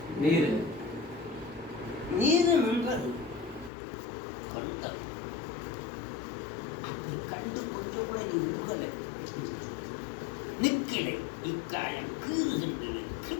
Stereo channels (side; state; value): right; drops out; at 3.7 s